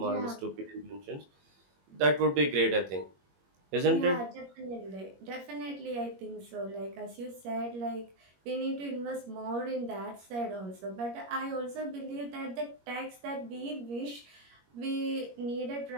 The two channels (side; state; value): left; late; 21 ms